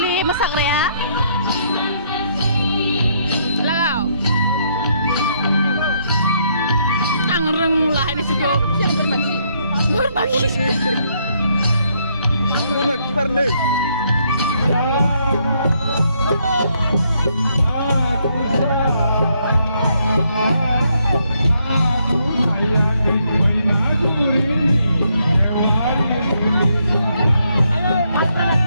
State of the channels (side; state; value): both; inverted; correlation -0.73